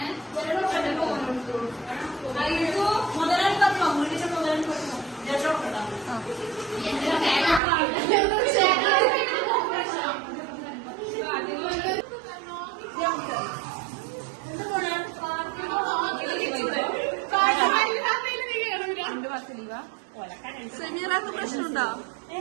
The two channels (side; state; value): left; drops out; at 7.6 s